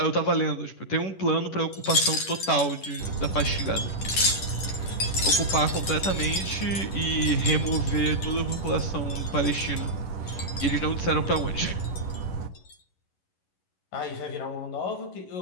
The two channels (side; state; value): right; late; 11 ms